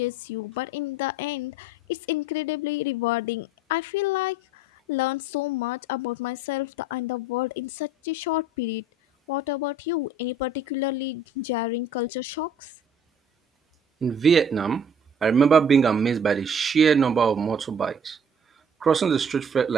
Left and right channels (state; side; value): normal; both; correlation 0.53